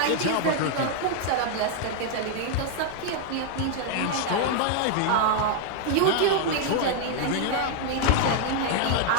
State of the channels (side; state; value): both; different; correlation 0.00